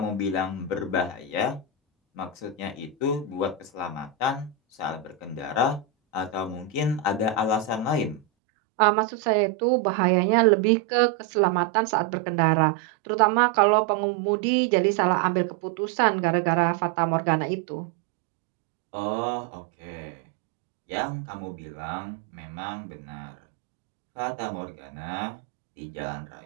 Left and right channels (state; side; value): drops out; left; at 8.2 s